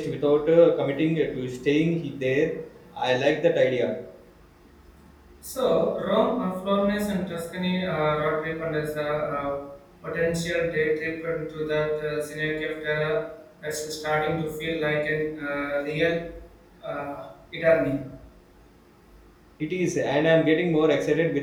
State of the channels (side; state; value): both; identical; correlation 1.00